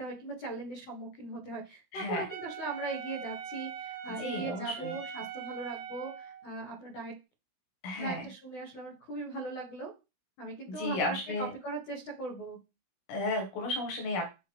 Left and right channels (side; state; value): right; late; 16 ms